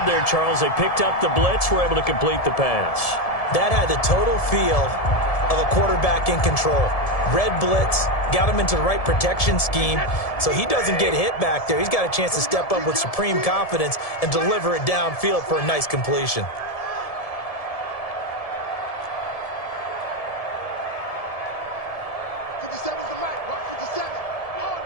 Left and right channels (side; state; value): right; late; 1.7 ms